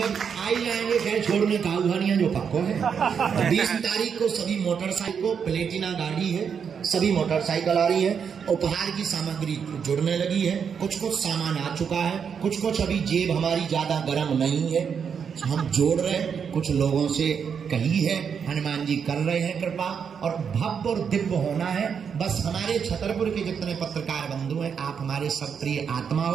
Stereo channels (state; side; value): quieter; left; 6.9 dB